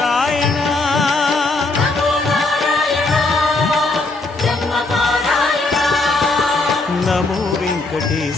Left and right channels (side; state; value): right; quieter; 3.2 dB